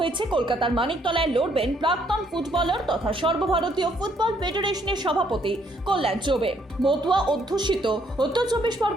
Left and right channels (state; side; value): normal; both; correlation 0.68